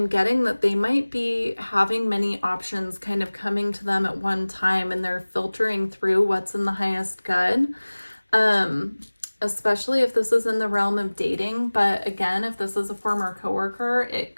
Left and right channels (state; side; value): inverted; both; correlation -1.00